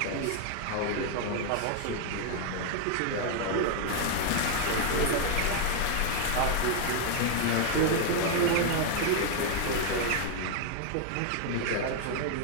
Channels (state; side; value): different; both; correlation 0.00